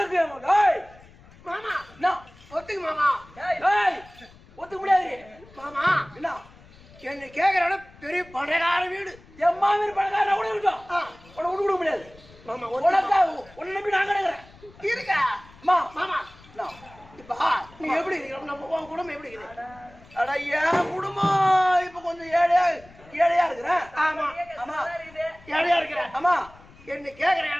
மாமா. ஒத்துக்கு மாமா. ஒத்துக்க முடியாது மாமா. என்ன என்ன கேக்குற பெரிய பணக்கார வீடு, என் மாமியார் பணக்காரனா கூட இருக்கும். உன்னை விட்டு கொடுக்க முடியாது மாமா. உனக்கா உன்னை நம்பி நான் கிடக்குறேன். இருக்கா மாமா? இப்ப நீ எப்படி இருக்கிற? நம்ம உன் குடும்பம் எப்படி இருக்குது? அட என் குடும்பம் இப்ப கொஞ்சம் ஏழையா இருக்கிறேன். ஆமா ஆமா, ஏழையா இருக்கிறேன். ஆமா. என்ன கேக்குற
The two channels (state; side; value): noise; left; rumble, 24 dB below the sound